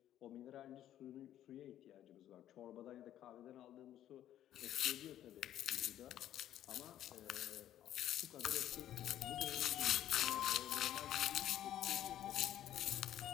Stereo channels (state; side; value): quieter; right; 11.9 dB